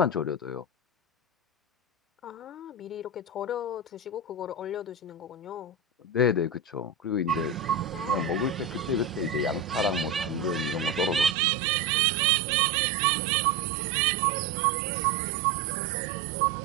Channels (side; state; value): left; drops out; at 11.4 s